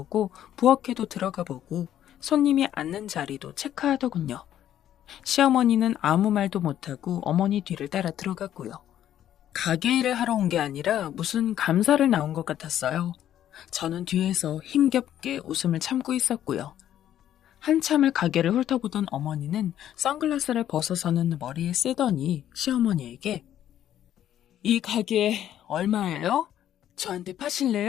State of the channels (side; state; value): right; quieter; 11.2 dB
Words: 부엌에도 들어가보고 손님이 앉는 자리도 체크하더군요. 시어머니는 아무 말도 못하고 어머니 뒤를 따라 들어갔고요. 가게 일을 하러 온 게 아니라 무슨 감사를 나온 것 같았어요. 저는 뒤에서 힘겹게 웃음을 참고 있었고요. 한참을 가게를 훑어보던 어머니는 선글라스를 벗어서는 머리에 쓰더니 시어머니에게 이 가게 얼마예요? 저한테